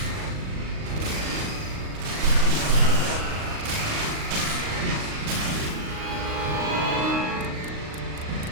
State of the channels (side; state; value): left; late; 38 ms